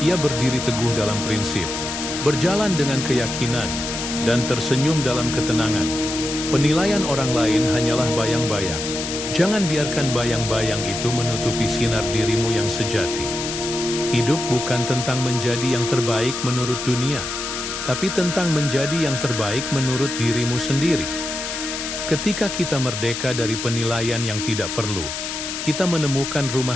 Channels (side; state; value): left; noise; hiss, 5 dB below the sound